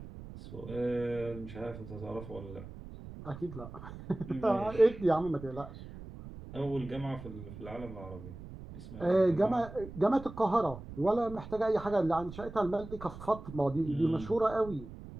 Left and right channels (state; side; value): noise; right; rumble, 13 dB below the sound